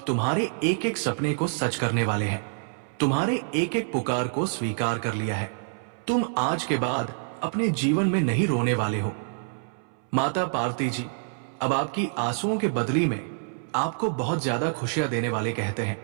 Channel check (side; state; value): left; silent; 60 dB below the other